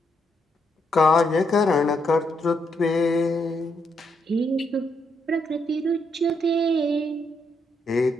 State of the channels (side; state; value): both; normal; correlation 0.77